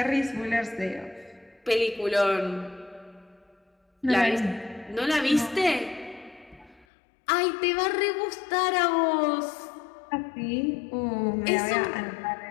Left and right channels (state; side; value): drops out; right; at 6.9 s